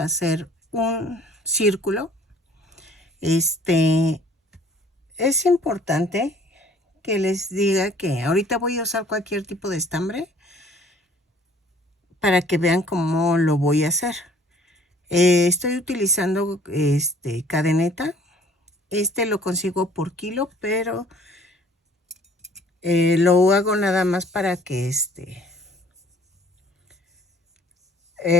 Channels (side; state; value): both; normal; correlation 0.54